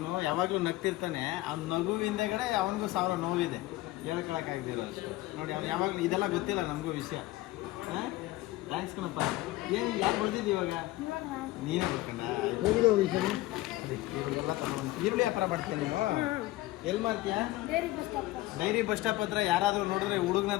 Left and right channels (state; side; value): quieter; right; 17.7 dB